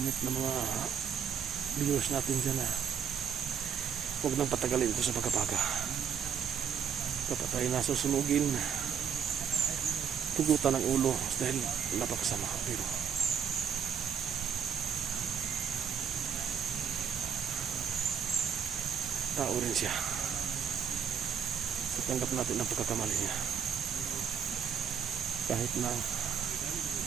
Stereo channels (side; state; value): left; quieter; 7.7 dB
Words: ng mga viewers natin dyan na huwag nang patagalin ito sa Baga-Baga. Dapat tayo nasusunugin, tugutan ng ulo dahil napakasama. Pero tao rin siya. So tanggap natin ang pagkakamali niya. Kahit na